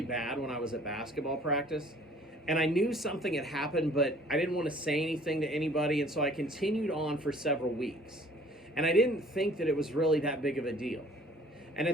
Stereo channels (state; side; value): normal; both; correlation 0.54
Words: when I was at basketball practice. And I knew something had happened, but I didn't want to say anything to anybody, and so I continued on for several weeks. And I didn't think that it was really that big of a deal. And